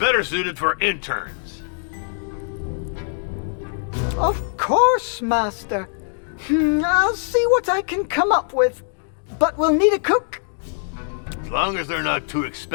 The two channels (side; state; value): right; silent; digital silence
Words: suited for interns. Of course, Master. I'll see what I can come up with. But we'll need a cook. As long as they're not too